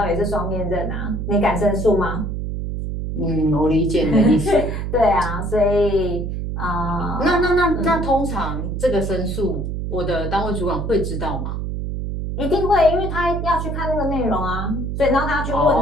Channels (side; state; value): right; noise; hum, 3 dB below the sound